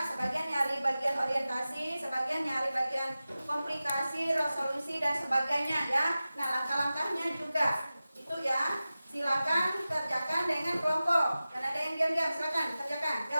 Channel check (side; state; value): both; inverted; correlation -0.95